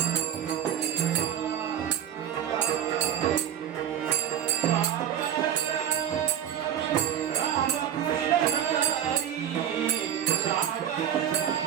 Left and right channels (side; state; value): left; quieter; 9.9 dB